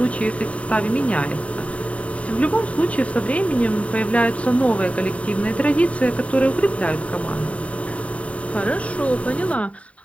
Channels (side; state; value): right; late; 0.065 ms